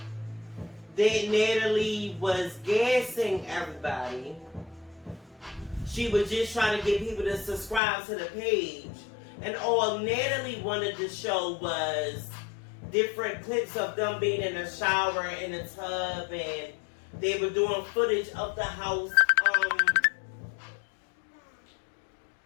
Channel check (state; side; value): drops out; right; at 7.8 s